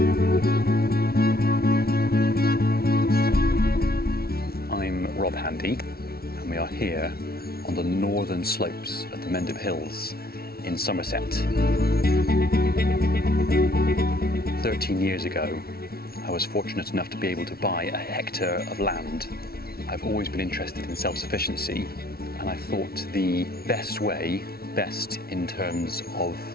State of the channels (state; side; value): late; right; 0.44 ms